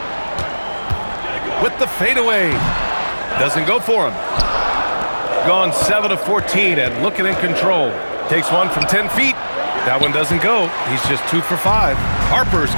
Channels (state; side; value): inverted; both; correlation -1.00